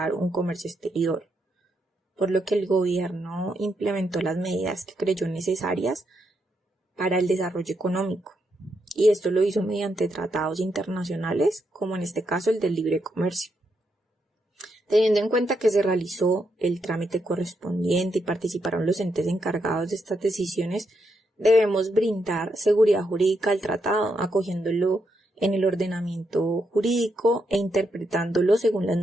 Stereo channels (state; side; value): normal; both; correlation 0.81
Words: un comercio exterior, por lo que el gobierno implementó las medidas que creyó necesarias para el desarrollo económico, y esto lo hizo mediante tratados internacionales, como en este caso el del libre comercio. Teniendo en cuenta que se realizó el trámite correspondiente y participaron los entes encargados de estas decisiones, debemos brindar seguridad jurídica al tratado, acogiéndolo en el ordenamiento jurídico e interpretándolo según las